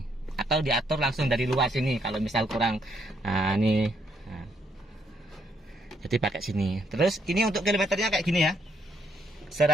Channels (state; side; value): normal; both; correlation 0.73